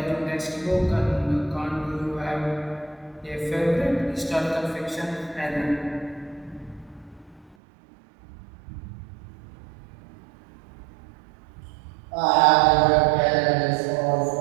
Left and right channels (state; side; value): drops out; left; at 7.6 s